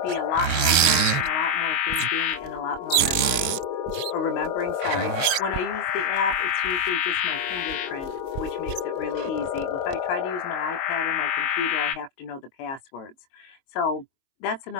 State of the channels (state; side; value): late; right; 22 ms